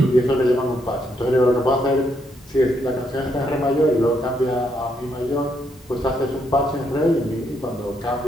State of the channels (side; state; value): both; normal; correlation 0.76